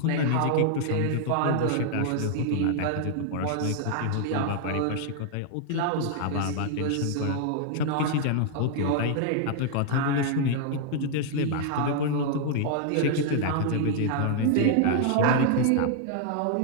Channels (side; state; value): both; different; correlation -0.01